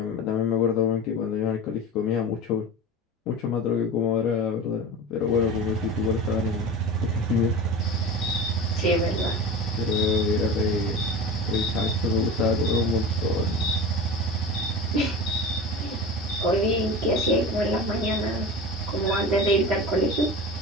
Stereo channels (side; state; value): both; normal; correlation 0.31